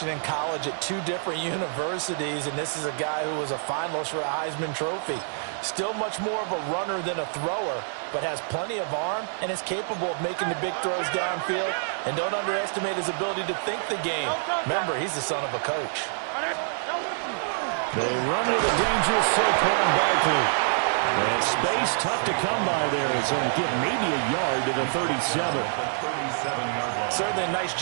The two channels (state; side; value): silent; left; digital silence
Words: in college at 2 different universities, and this is a guy who was a finalist for the Heisman Trophy. Still much more of a runner than a thrower, but has plenty of arm and is capable of making the big throws downfield. And don't underestimate his ability to think the game. Remember, he's the son of a coach. They run with a dangerous Saquon Barkley. And space tough to come by there, as he'll get maybe a yard to the 37. Certainly a nice